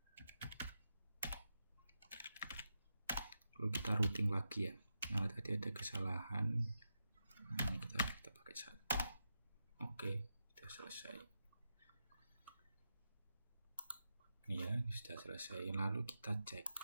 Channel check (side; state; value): both; inverted; correlation -0.87